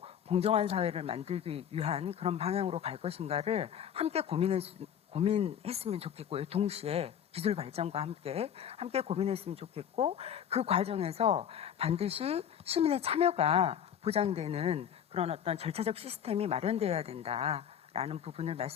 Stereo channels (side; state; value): right; quieter; 9.0 dB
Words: 공정한 사회를 만들기 위한 그런 방향으로 갈 것인가를 함께 고민했으면 좋겠고요. 동시에 기술 발전과 함께 고민했으면 좋겠고 그 과정에서 반드시 시민의 참여가 보장되는 그런 어떤 절차적 시스템이 마련되어야 된다라는 부분을